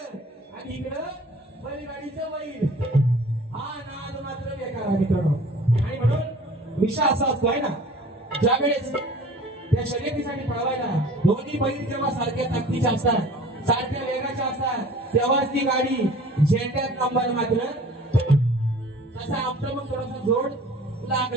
आणि इकडं बैलगाडीचं बैल, हा नाद मात्र बेकार आहे मित्रांनो. आणि म्हणून विषय असा असतो आहे ना, ज्यावेळेस त्या शर्यतीसाठी पळवायला दोन्ही बैल जेव्हा सारख्या ताकदीच्या असतात, सारख्या वेगाच्या असतात, तेव्हाच ती गाडी झेंड्यात नंबर मात्र तसा आमचं मग थोडासा जोड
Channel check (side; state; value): both; normal; correlation 0.46